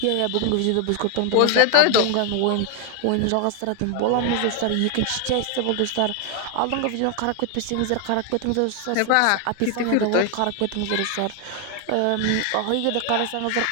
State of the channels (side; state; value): both; different; correlation 0.00